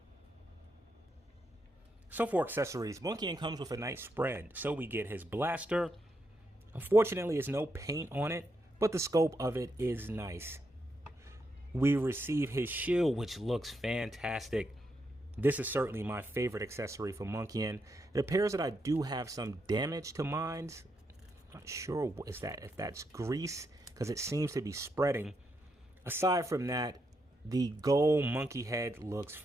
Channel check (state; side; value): normal; both; correlation 0.81